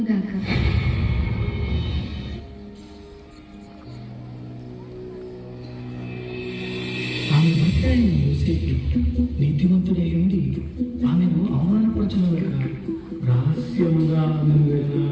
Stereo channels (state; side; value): identical; both; correlation 1.00